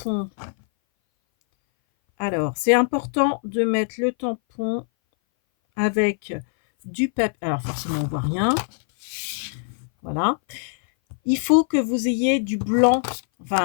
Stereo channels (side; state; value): right; silent; 60 dB below the other